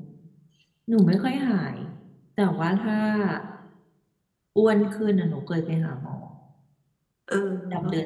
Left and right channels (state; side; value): identical; both; correlation 1.00